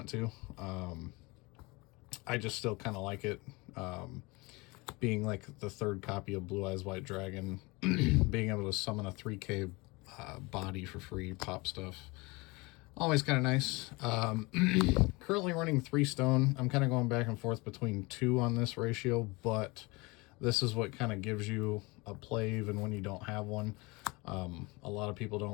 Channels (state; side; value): quieter; right; 25.0 dB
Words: to. I just still kind of like it, being like the 3rd copy of Blue Eyes White Dragon, being able to summon a 3K body for free, pop stuff. Always kind of nice. Currently running 3 stone. I'm kind of going back and forth between 2 on this ratio, but this is what kind of gives you a play even when you don't have one. A lot of people